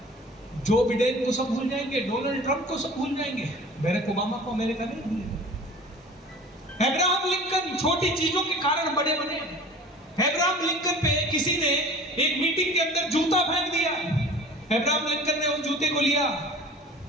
जो बिडेन को सब भूल जाएंगे, डोनाल्ड ट्रंप को सब भूल जाएंगे, बैरक ओबामा को अमेरिका नहीं भूलेगा। अब्राहम लिंकन छोटी चीजों के कारण बड़े बने। अब्राहम लिंकन पे किसी ने एक मीटिंग के अंदर जूता फेंक दिया। अब्राहम लिंकन ने उस जूते को लिया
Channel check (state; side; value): normal; both; correlation 0.42